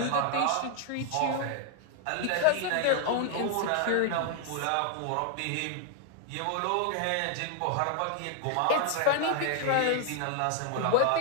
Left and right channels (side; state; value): both; different; correlation 0.00